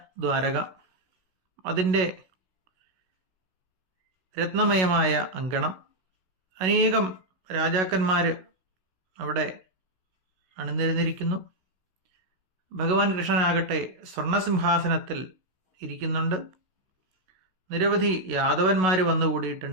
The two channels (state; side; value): late; left; 16 ms